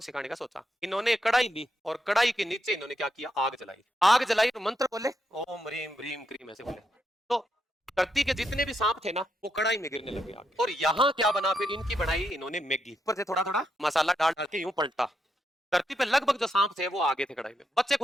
सिखाने का सोचा। इन्होंने कढ़ाई ली और कढ़ाई के नीचे इन्होंने क्या किया, आग जलाई। आग जलाई तो मंत्र बोले, ओम ह्रीम ह्रीम क्रीम, ऐसे बोले। तो धरती के जितने भी सांप थे ना वो कढ़ाई में गिरने लगे आगे। और यहाँ क्या बना, फिर इनकी बनाई इन्होंने मैगी, ऊपर से थोड़ा थोड़ा मसाला डाल डाल के यूं पलटा। धरती पे लगभग जो सांप थे वो आगे थे कढ़ाई में, बच्चे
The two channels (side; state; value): both; normal; correlation 0.82